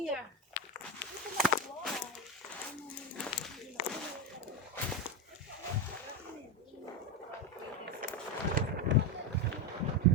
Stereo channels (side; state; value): both; normal; correlation 0.09